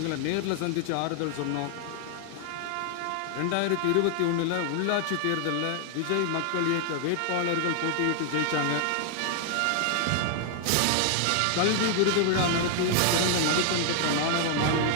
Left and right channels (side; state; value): both; different; correlation 0.00